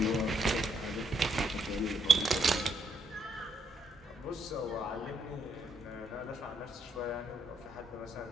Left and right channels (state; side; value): normal; both; correlation 0.73